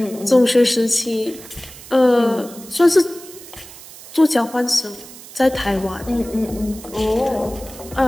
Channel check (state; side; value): noise; right; hiss, 17 dB below the sound